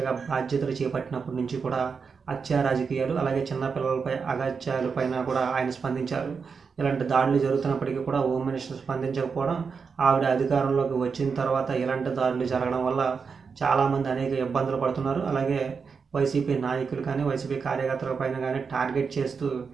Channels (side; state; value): left; quieter; 5.5 dB